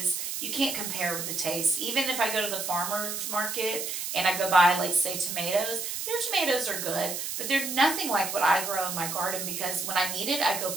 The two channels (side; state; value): right; noise; hiss, 4 dB below the sound